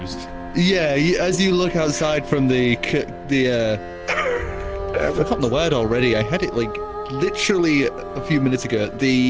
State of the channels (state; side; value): identical; both; correlation 1.00